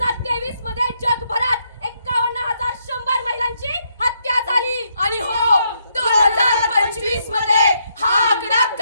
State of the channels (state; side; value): inverted; both; correlation -0.76